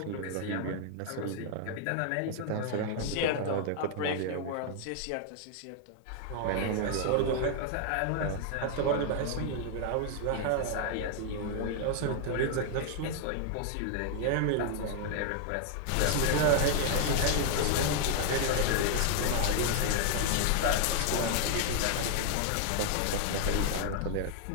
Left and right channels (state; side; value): different; both; correlation 0.00